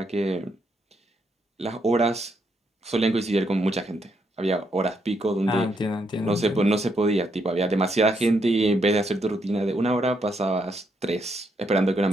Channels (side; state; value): both; normal; correlation 0.77